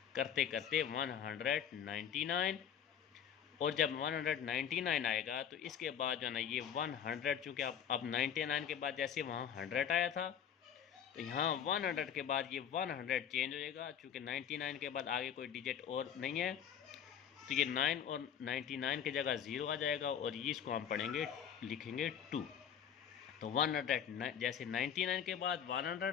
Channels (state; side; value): quieter; right; 8.5 dB